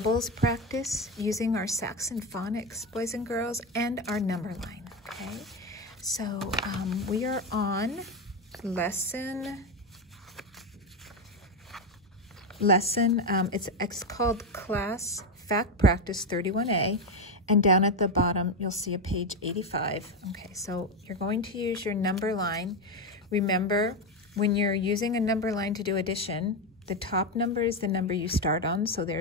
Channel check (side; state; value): both; normal; correlation 0.11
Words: practice using our Saxon phonics, boys and girls, and our number line, okay? So we are on it's called Class Fact Practice 31A, and down at the bottom you'll see a page 85. Okay, so you're going to use your number line. Remember, when you're using a number line to do addition, the top number is the number you start on, so